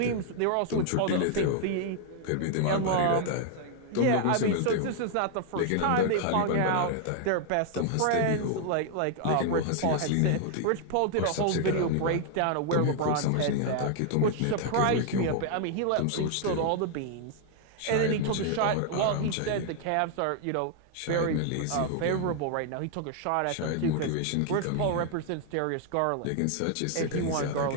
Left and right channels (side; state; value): both; different; correlation 0.00